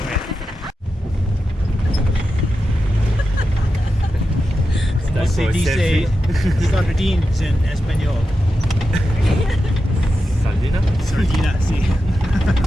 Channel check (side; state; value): both; normal; correlation 0.89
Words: ¿Cómo se dice sardines en español? Sardina? Sardina, sí.